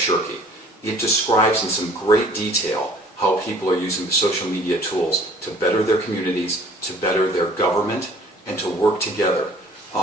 It describes in some great detail how people are using the social media tools to better their communities, to better their government, and to work together.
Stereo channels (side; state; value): both; normal; correlation 0.53